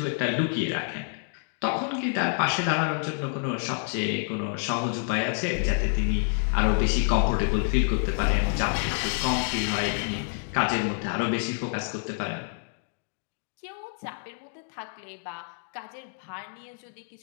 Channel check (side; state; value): right; silent; digital silence